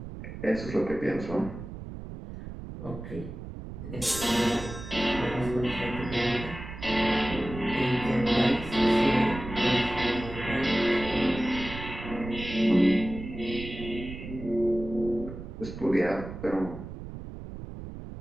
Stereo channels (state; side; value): noise; right; rumble, 10 dB below the sound